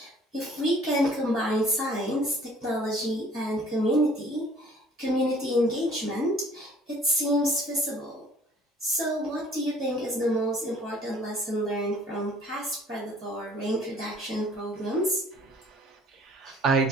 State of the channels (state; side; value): normal; both; correlation 0.55